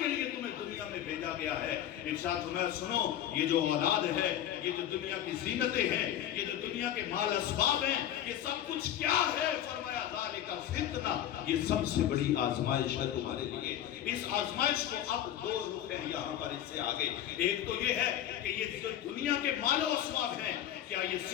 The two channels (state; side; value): quieter; right; 11.4 dB